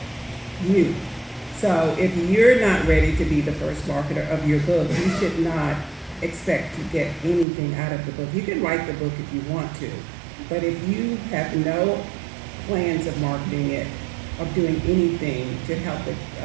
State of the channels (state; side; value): drops out; left; at 7.5 s